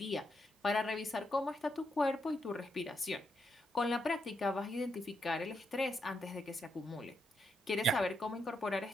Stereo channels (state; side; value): normal; both; correlation 0.81